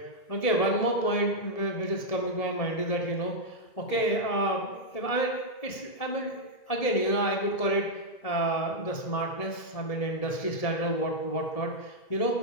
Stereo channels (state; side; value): late; right; 1.7 ms